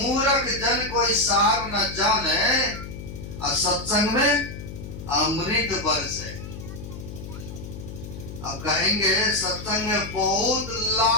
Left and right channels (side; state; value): left; noise; hum, 11 dB below the sound